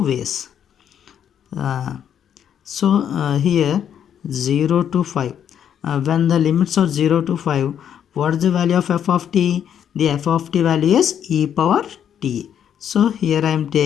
ways. So here 0 to 5, when the limits are 0 to 5, what is the value of f of t? The f of t value is e power t. So here I am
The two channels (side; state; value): right; quieter; 9.1 dB